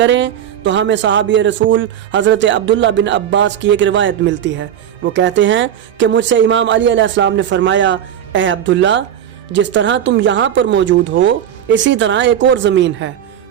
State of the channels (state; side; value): quieter; left; 9.9 dB